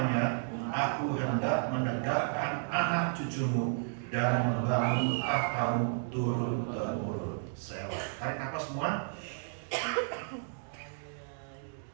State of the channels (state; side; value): silent; left; digital silence